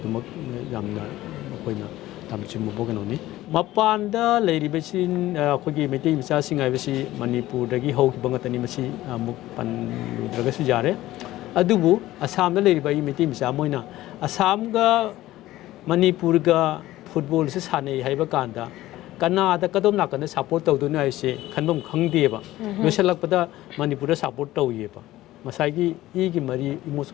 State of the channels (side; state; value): right; quieter; 15.9 dB